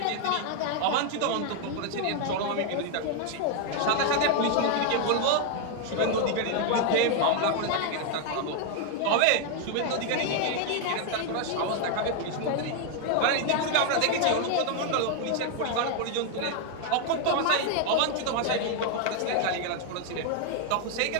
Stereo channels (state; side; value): different; both; correlation 0.00